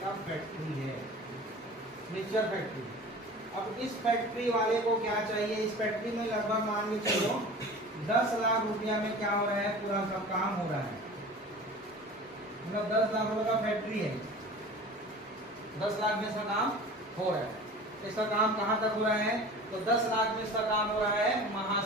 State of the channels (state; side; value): normal; both; correlation 0.39